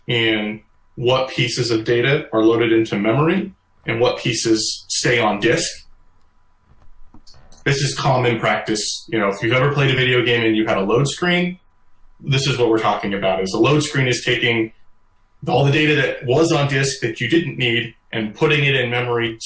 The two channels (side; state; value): both; identical; correlation 1.00